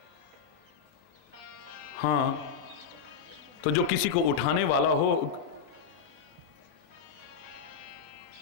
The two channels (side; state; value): right; quieter; 6.6 dB